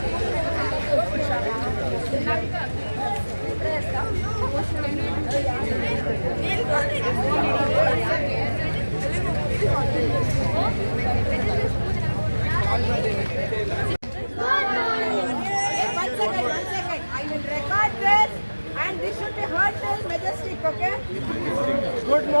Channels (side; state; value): both; inverted; correlation -1.00